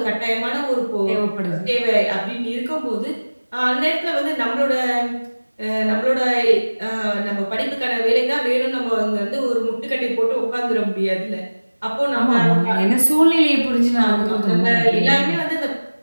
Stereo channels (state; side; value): inverted; both; correlation -1.00